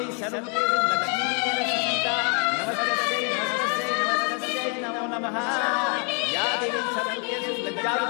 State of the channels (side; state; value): right; quieter; 38.0 dB